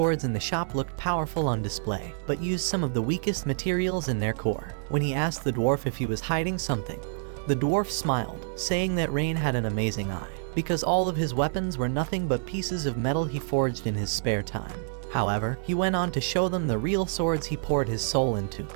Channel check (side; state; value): left; silent; digital silence